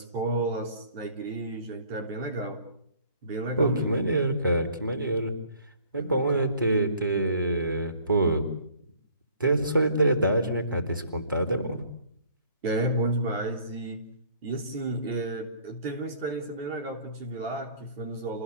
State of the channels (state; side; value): inverted; both; correlation -0.56